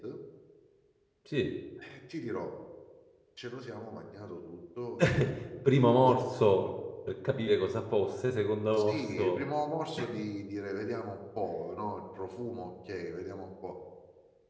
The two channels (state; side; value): identical; both; correlation 1.00